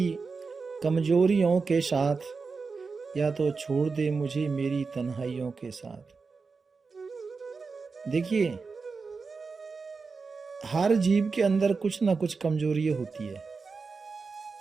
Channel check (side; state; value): left; quieter; 4.7 dB